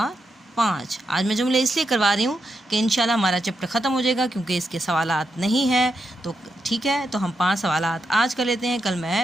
5। आज मैं जुमले इसलिए करवा रही हूँ कि इंशाल्लाह हमारा चैप्टर ख़त्म हो जाएगा, क्योंकि इसके सवालात नहीं हैं। तो ठीक है, तो हम 5 सवालात आज कर लेते हैं। कल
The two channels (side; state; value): both; normal; correlation 0.84